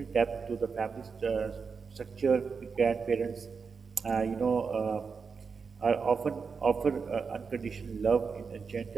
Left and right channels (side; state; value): left; quieter; 5.4 dB